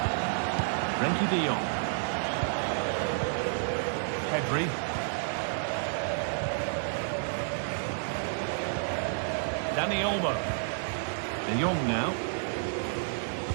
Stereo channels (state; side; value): silent; left; digital silence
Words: Frenkie de Jong. Pedri. Dani Olmo. De Jong now.